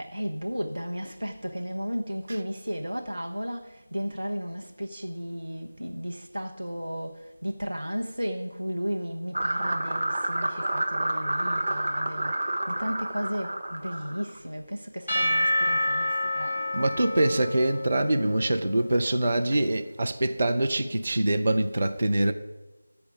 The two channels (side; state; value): both; inverted; correlation -0.96